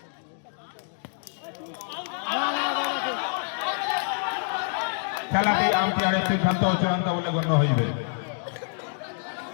খেলাটি আম্পায়ারের সিদ্ধান্ত ও চূড়ান্ত বলে গণ্য হইবে।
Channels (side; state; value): right; silent; 60 dB below the other